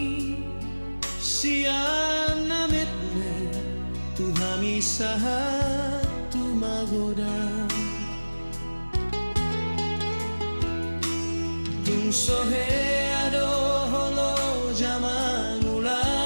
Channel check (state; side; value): inverted; both; correlation -1.00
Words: siya namit me tuhami sahat tumagoda. Tung sohe ado holo jaman ula